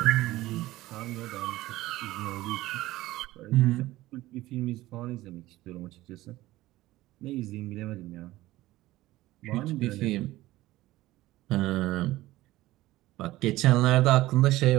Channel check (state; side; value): quieter; left; 17.1 dB